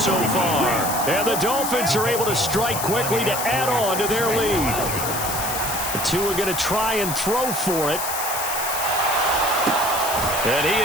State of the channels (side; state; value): left; noise; hiss, 4 dB below the sound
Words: far. And the Dolphins are able to strike quickly to add on to their lead. The 2 are going to try and throw for it. And he